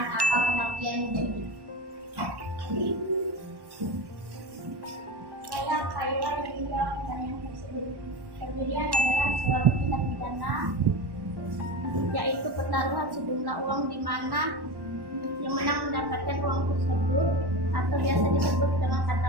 apa pengertian judi. Saya Khairul yang menjawab pertanyaan tersebut. Perjudian adalah suatu tindak pidana, yaitu pertaruhan sejumlah uang di mana yang menang mendapatkan uang tersebut, atau biasa disebut dengan kata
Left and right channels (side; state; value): left; late; 1.1 ms